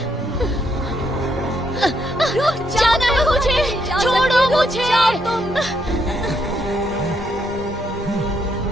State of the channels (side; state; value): both; normal; correlation 0.75